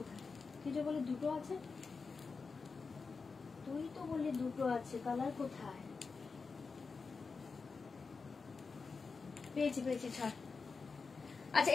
কি যে বলে দুটো আছে, তুই তো বললি দুটো আছে, কালার কোথায়, পেয়েছি পেয়েছি ছাড়। আচ্ছা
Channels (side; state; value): right; quieter; 4.7 dB